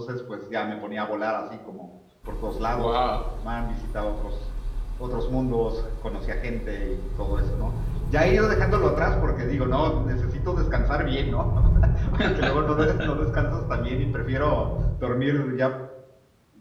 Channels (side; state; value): both; identical; correlation 1.00